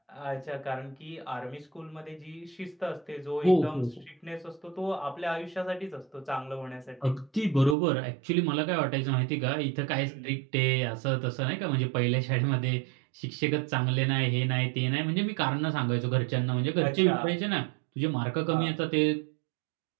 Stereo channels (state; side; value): drops out; left; at 7.8 s